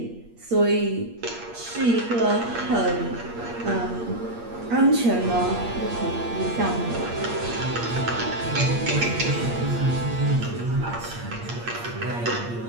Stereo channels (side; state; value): left; late; 8.6 ms